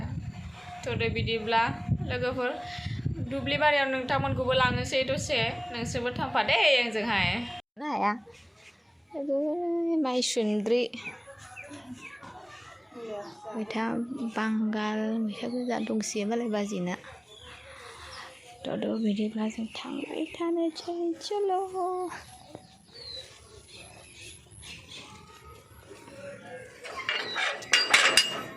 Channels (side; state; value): both; identical; correlation 1.00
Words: थ'दो बिदिब्ला लोगोफोर दुब्लि बारियाव नोंथांमोनखौबो लांनोसै दसे नोंसोरबो थांफादे आंजोंहाय हाया माइसुन्द्रि मैथा बांगाल मैथा गोजा दंसोयो मालाय बाजैना थ' बिदिब्ला जों थांबाय थानोसै चल'